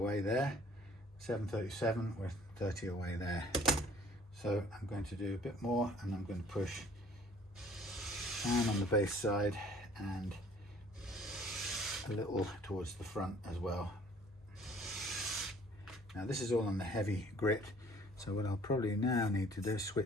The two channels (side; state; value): both; normal; correlation 0.54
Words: there. 737, we're 30 away there. So I'm going to do a bit more, and I'm going to push down on the bass side and a little towards the front as well. Now this is all on the heavy grit, so what I'll probably now need to do is